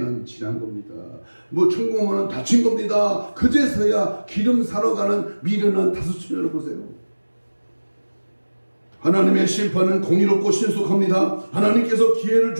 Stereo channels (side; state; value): both; inverted; correlation -1.00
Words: 지난 겁니다. 뭐 천공은 다친 겁니다. 그제서야 기름 사러 가는 미련한 다섯처녀를 보세요. 하나님의 심판은 공의롭고 신속합니다. 하나님께서 기회를